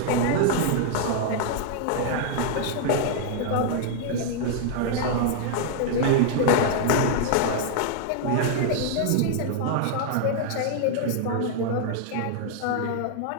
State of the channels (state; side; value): different; both; correlation 0.00